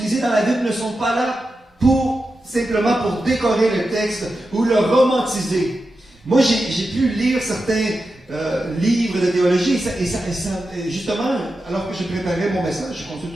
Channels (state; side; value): normal; both; correlation 0.90